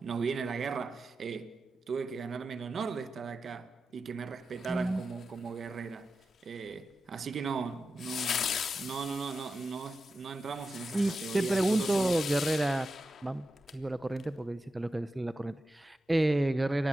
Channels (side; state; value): both; normal; correlation 0.91